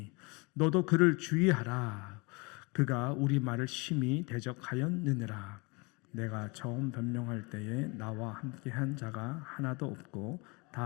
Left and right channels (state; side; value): quieter; right; 28.6 dB